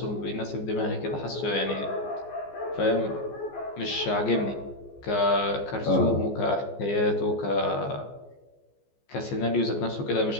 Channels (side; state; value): right; late; 14 ms